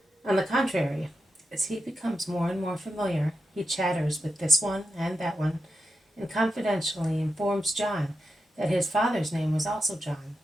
On the contrary, as he becomes more and more familiar, he chatters with this one and that one, and confidentially informs John that his father's name was also John,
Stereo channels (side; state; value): both; normal; correlation 0.87